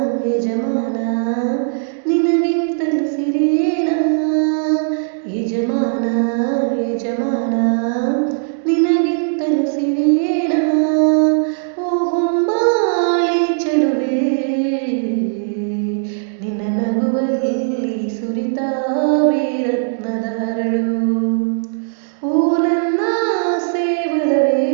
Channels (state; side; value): silent; left; digital silence